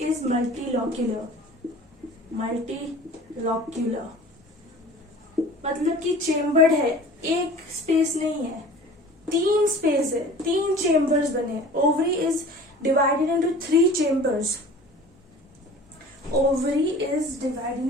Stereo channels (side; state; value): both; normal; correlation 0.43